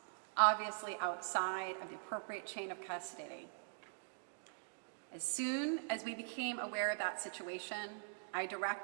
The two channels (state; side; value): silent; left; digital silence